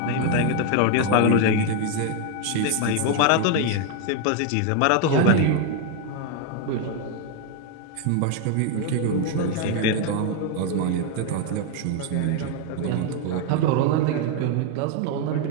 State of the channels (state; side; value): different; both; correlation 0.01